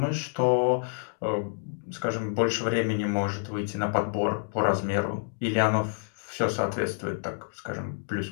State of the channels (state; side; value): silent; right; digital silence